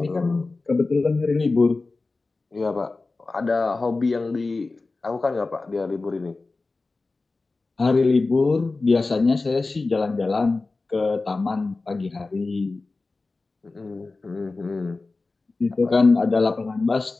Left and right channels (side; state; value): right; quieter; 3.6 dB